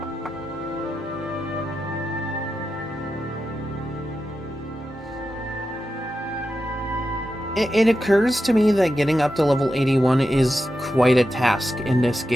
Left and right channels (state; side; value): normal; both; correlation 0.89